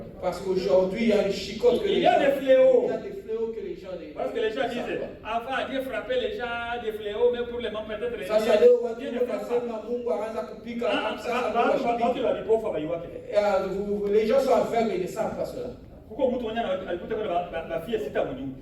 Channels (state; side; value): identical; both; correlation 1.00